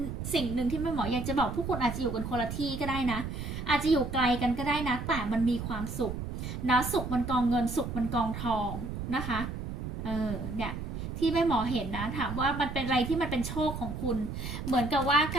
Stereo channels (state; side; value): noise; right; rumble, 6 dB below the sound